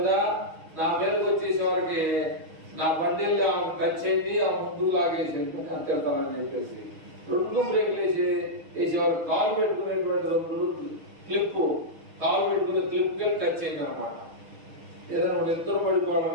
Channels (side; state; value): left; late; 6.3 ms